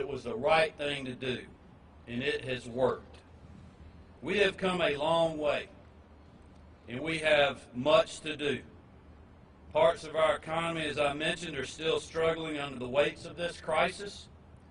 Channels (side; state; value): both; identical; correlation 1.00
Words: was the right thing to do, and it has worked. We have come a long way, and we have much to do. Parts of our economy, as I mentioned, are still struggling under the weights of this crisis,